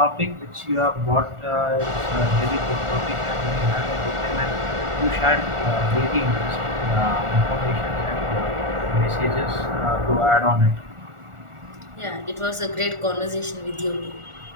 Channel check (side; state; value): left; late; 1.4 ms